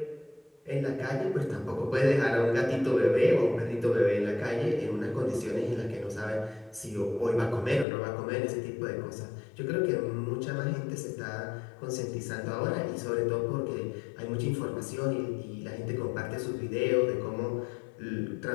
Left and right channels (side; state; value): right; drops out; at 7.9 s